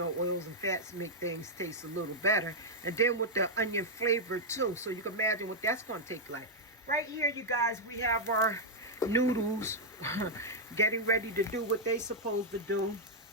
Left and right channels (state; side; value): normal; both; correlation -0.04